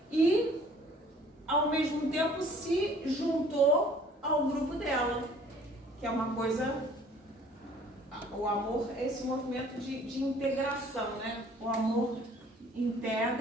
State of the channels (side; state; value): both; normal; correlation 0.54